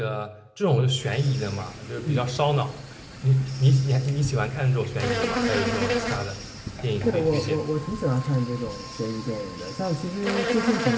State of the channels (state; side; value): identical; both; correlation 1.00